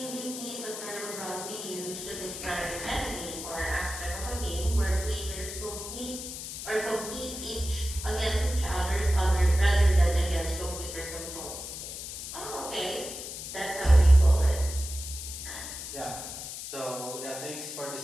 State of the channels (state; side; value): noise; left; hiss, 8 dB below the sound